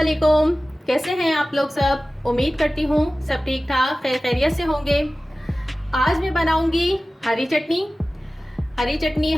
कैसे हैं आप लोग सब? उम्मीद करती हूँ सब ठीक ठाक खैर खैरियत से होंगे। आज मैं बनाऊंगी हरी चटनी।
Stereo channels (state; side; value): normal; both; correlation 0.96